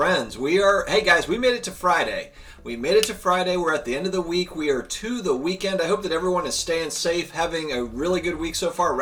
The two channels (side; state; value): both; identical; correlation 1.00